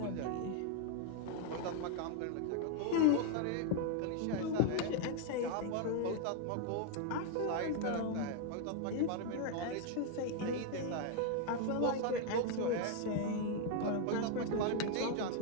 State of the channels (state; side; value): different; both; correlation 0.00